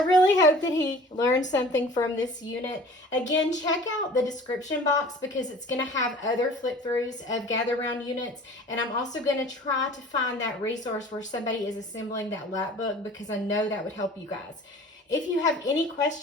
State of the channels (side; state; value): both; normal; correlation 0.45